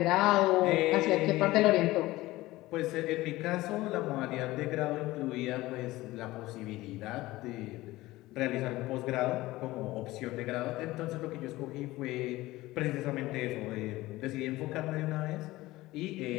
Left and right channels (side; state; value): right; quieter; 18.3 dB